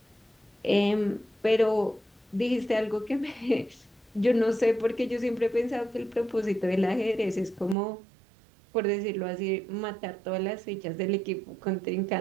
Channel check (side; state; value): left; drops out; at 7.8 s